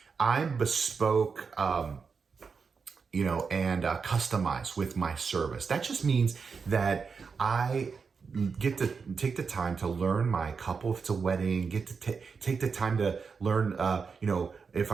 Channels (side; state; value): left; quieter; 5.4 dB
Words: I'm bespoke, and customized with my service. That just means that I get to take the time to learn my couple, if it's a wedding, get to take the time to learn, if